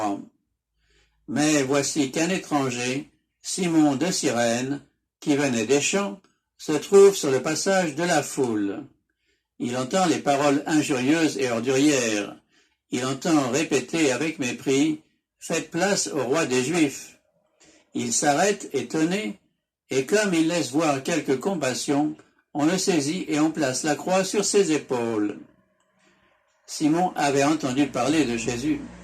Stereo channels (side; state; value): both; identical; correlation 1.00